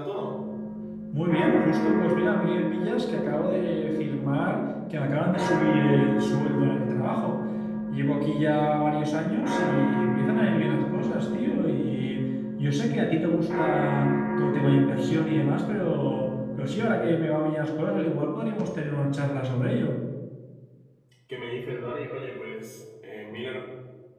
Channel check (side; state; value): both; identical; correlation 1.00